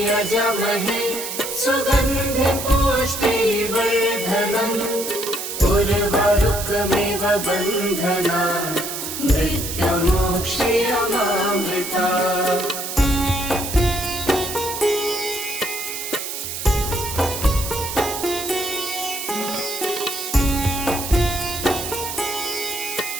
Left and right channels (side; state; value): right; noise; hiss, 6 dB below the sound